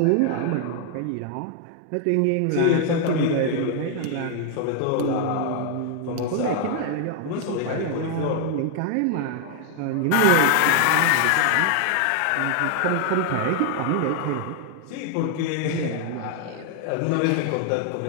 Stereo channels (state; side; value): different; both; correlation 0.00